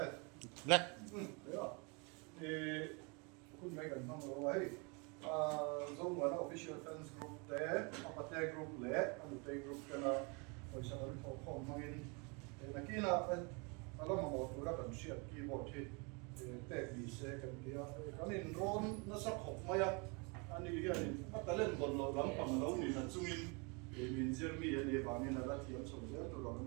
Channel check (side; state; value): left; quieter; 31.7 dB